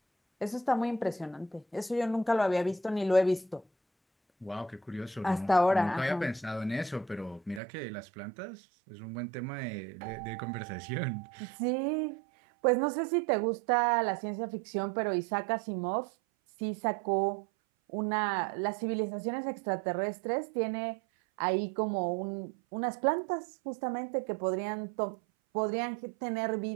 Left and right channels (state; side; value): drops out; left; at 7.6 s